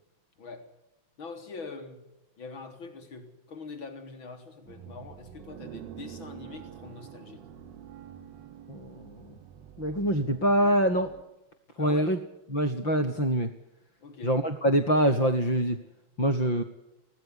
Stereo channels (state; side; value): late; right; 5.9 ms